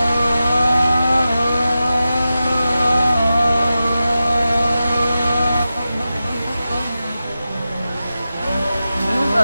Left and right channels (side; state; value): both; inverted; correlation -0.93